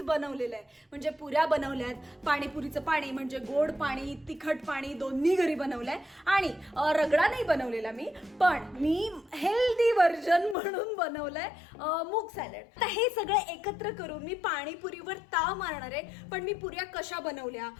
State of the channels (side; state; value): right; drops out; at 10.6 s